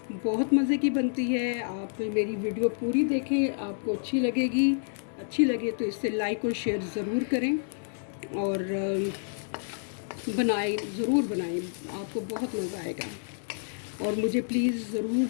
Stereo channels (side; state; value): right; silent; digital silence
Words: बहुत मज़े की बनती है। आप मेरी वीडियो पूरी देखें, आपको अच्छी लगेगी। अच्छी लगे तो इससे लाइक और शेयर ज़रूर करें और ज़रूर बनाएं, आपको बहुत मज़ा आएगा। और मुझे प्लीज़ ज़रूर